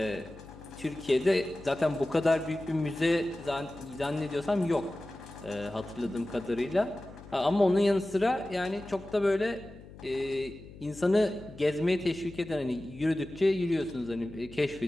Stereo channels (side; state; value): left; noise; hum, 18 dB below the sound